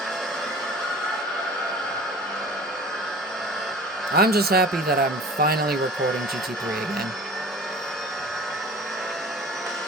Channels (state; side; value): normal; both; correlation 0.42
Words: I'm just happy that I'm finally recording GT3 again.